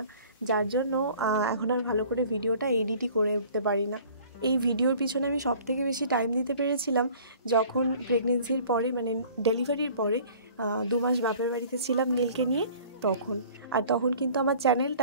যার জন্য এখন আর ভালো করে ভিডিওটা এডিটই করে উঠতে পারি না। এই ভিডিওর পিছনে আমি সবথেকে বেশি টাইম দিতে পেরেছিলাম যখন প্রেগনেন্সির পরে, মানে ডেলিভারির পরে 2 মাস বাপের বাড়িতে ছিলাম নীলকে নিয়ে, তখন কিন্তু আমার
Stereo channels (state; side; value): inverted; both; correlation -0.50